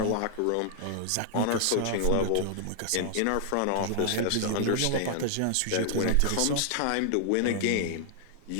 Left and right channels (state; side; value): different; both; correlation -0.01